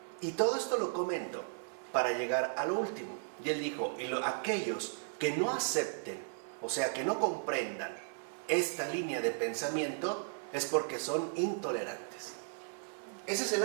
Y todo esto lo comento para llegar a lo último. Y él dijo, aquellos que no acepten, o sea, que no comprendan esta línea de pensamiento, es porque son intolerantes. Ese es el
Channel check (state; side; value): silent; left; 54 dB below the other